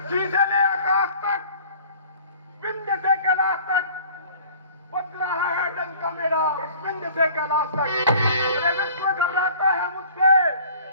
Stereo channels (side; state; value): both; inverted; correlation -0.49